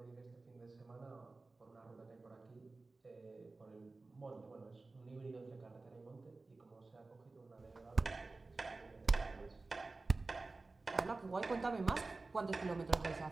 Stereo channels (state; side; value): quieter; left; 3.5 dB